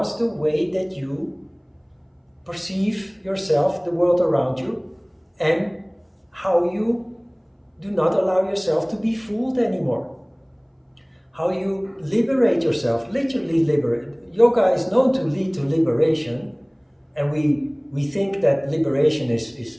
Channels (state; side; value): identical; both; correlation 1.00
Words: the way that you perceive yourself, the world around you, and how you do not allow yourself to be fooled anymore. How you liberate yourself, literally liberate. Yoga is known to lead to liberation, and we think that liberation